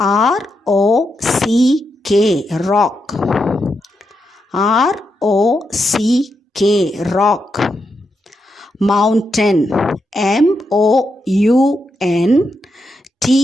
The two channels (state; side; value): normal; both; correlation 0.84